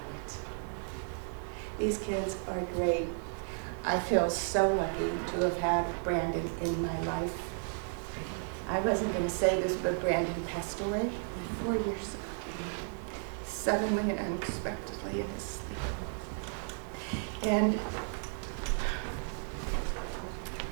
These kids are great. I feel so lucky to have had Brandon in my life. I wasn't going to say this, but Brandon passed away 4 years ago, suddenly and unexpectedly in his sleep. And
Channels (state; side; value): silent; left; 55 dB below the other